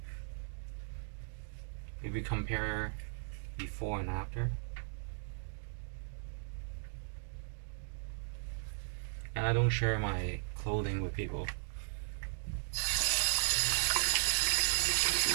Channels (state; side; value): silent; left; digital silence